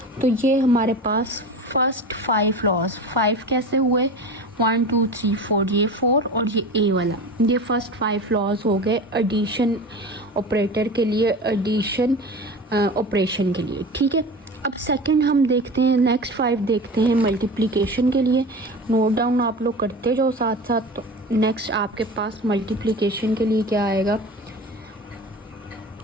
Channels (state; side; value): normal; both; correlation 0.32